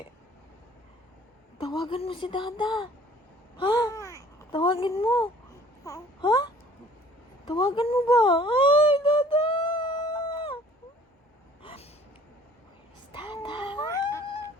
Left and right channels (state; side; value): normal; both; correlation 0.53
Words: Tawagan mo si Dada. Ha? Tawagin mo. Ha? Tawagan mo ba? Ay, Dada!